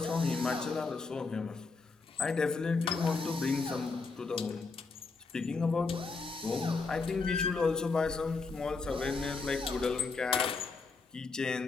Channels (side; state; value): right; quieter; 4.3 dB